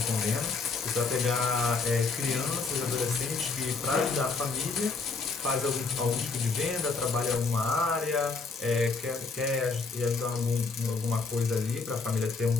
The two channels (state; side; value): quieter; right; 4.3 dB